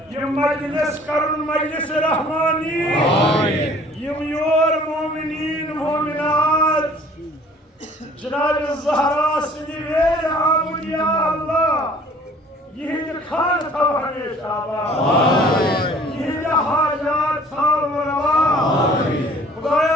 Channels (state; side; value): normal; both; correlation 0.53